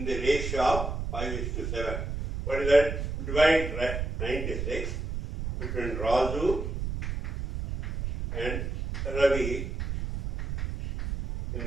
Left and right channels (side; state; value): right; noise; rumble, 4 dB below the sound